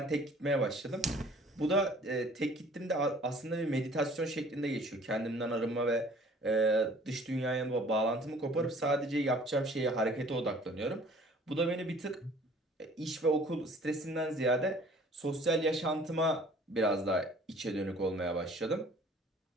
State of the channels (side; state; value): both; normal; correlation 0.52